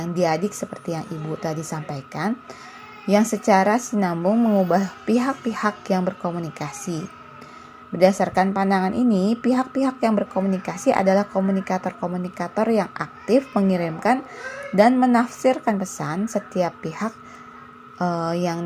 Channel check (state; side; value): identical; both; correlation 1.00